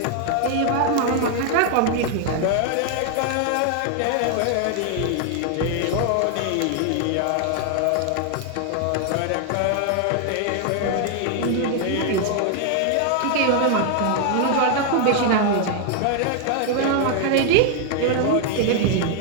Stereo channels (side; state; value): both; different; correlation 0.00